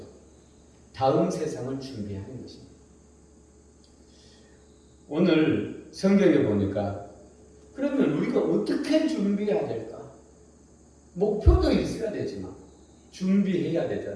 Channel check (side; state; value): both; identical; correlation 1.00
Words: 다음 세상을 준비하는 것입니다. 오늘 성경에 보니까 그러면 우리가 어떻게 준비해야 될까? 목표도 있어야 되지만 준비해야